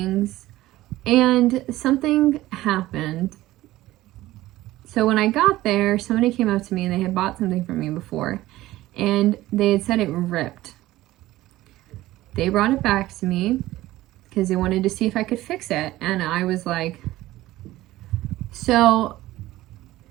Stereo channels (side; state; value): left; quieter; 16.5 dB